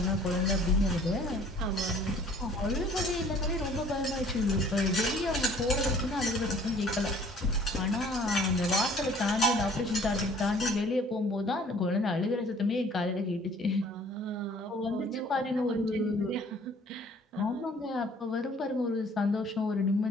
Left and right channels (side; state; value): both; normal; correlation 0.54